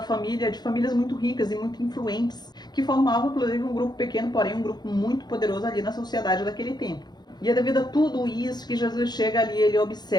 família, de famílias muito ricas e muito influentes, que formavam, inclusive, um grupo pequeno, porém um grupo muito poderoso ali na sociedade daquele tempo. E é devido a tudo isso que Jesus chega ali, ele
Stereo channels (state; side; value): late; right; 0.20 ms